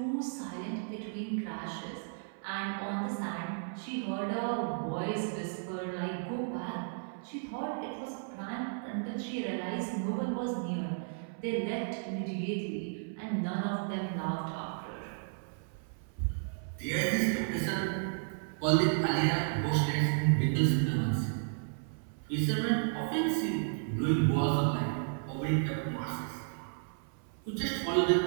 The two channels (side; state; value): left; silent; 55 dB below the other